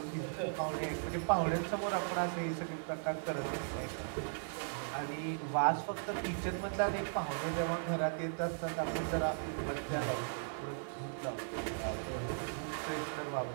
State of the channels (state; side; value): silent; left; 53 dB below the other